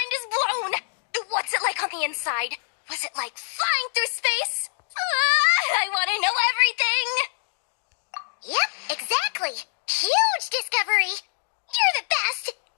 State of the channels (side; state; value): right; silent; digital silence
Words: is blown! What's it like on the inside? Was it like flying through space? I want to know everything! Yep, exactly. Huge discovery. You're the best.